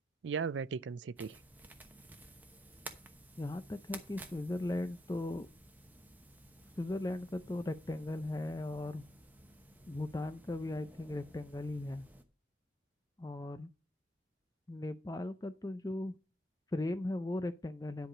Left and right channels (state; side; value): normal; both; correlation 0.79